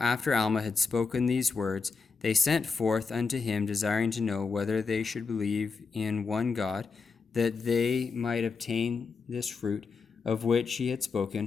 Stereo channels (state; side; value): quieter; right; 4.9 dB